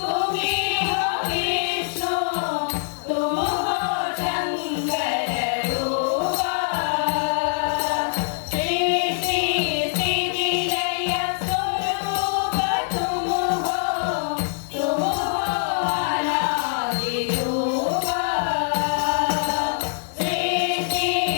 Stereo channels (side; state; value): right; silent; 63 dB below the other